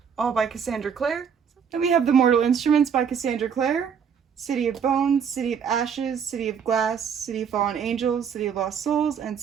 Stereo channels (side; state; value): left; quieter; 7.2 dB